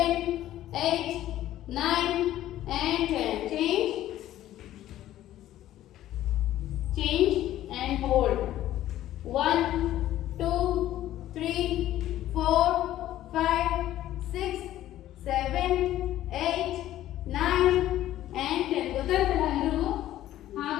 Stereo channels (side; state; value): right; quieter; 13.4 dB